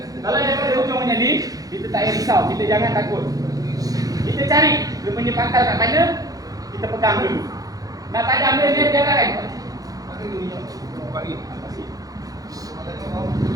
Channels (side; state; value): left; late; 0.17 ms